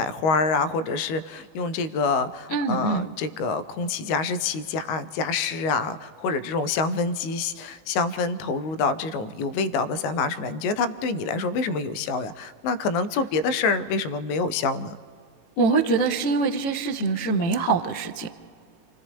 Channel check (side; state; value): right; late; 19 ms